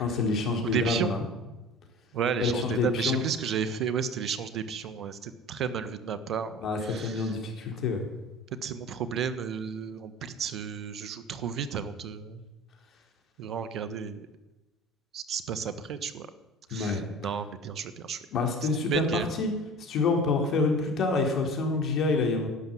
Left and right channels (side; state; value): both; normal; correlation 0.38